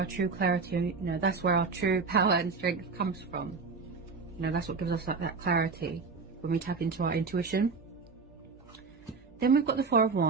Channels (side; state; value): left; quieter; 4.7 dB